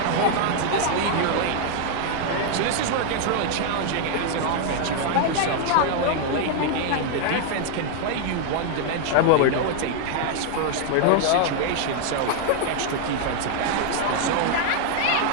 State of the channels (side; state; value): both; different; correlation 0.00